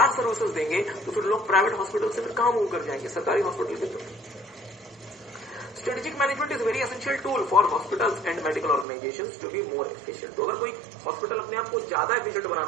सर्विसेज देंगे तो फिर लोग प्राइवेट हॉस्पिटल से फिर कहां मूव कर जाएंगे, सरकारी हॉस्पिटल की तरफ। Strategic management is very essential tool for hospitals and medical organizations to be more efficient. तो अगर कोई हॉस्पिटल अपने आप को ज्यादा एफिशिएंट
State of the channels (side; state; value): left; drops out; at 8.8 s